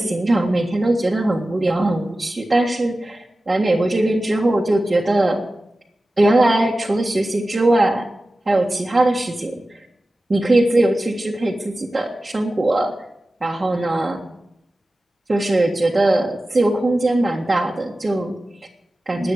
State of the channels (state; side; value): normal; both; correlation 0.95